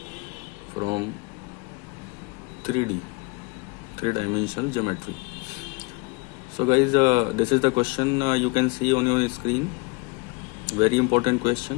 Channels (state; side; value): quieter; right; 28.1 dB